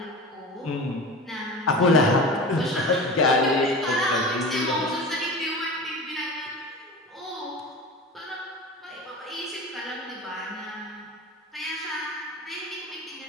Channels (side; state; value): both; normal; correlation 0.32